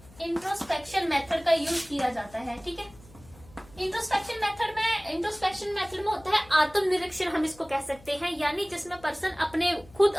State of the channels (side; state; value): left; noise; hum, 23 dB below the sound